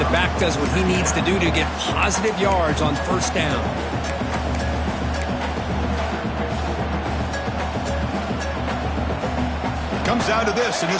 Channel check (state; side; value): identical; both; correlation 1.00